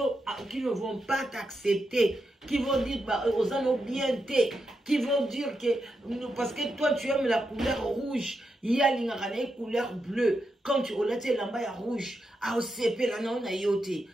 vont pas t'accepter, qui vont dire bah, aux anneaux bien qui vont dire que parce que toi tu aimes la couleur rouge, il y a une couleur bleue. Quand tu relates l'amba rouge, à OCP la non yote.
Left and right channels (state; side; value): normal; both; correlation 0.85